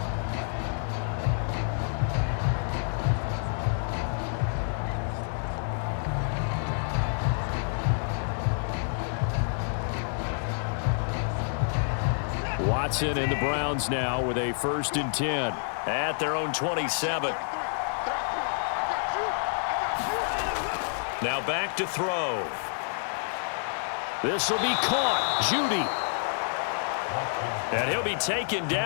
Watson and the Browns now with a 1st and 10 at their own 27. Now back to throw. This will be caught. Judy. And he'll be taken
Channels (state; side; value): silent; right; 59 dB below the other